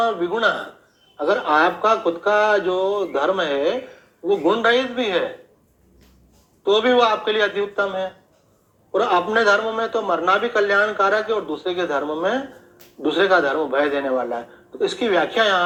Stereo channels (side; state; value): both; identical; correlation 1.00